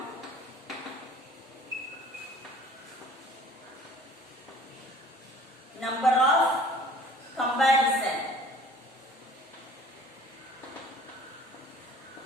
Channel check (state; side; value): normal; both; correlation 0.50